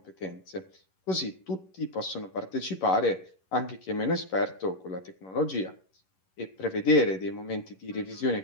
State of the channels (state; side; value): late; right; 11 ms